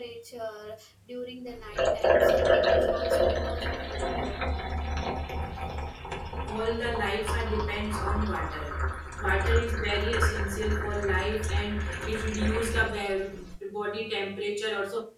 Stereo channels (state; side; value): identical; both; correlation 1.00